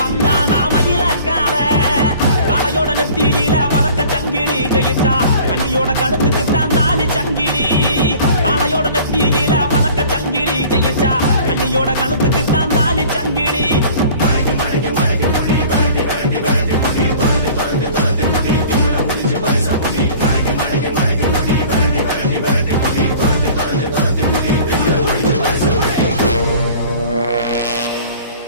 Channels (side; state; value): both; inverted; correlation -0.47